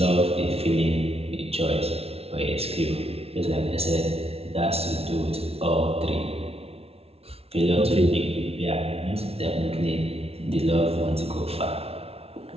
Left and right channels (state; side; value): late; left; 0.29 ms